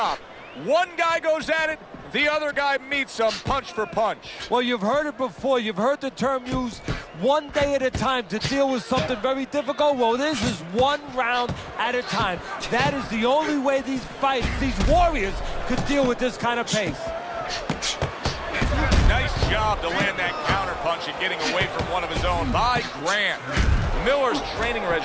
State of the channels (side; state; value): both; identical; correlation 1.00